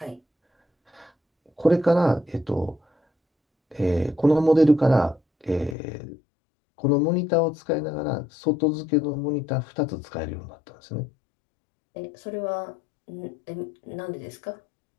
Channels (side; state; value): right; drops out; at 5.8 s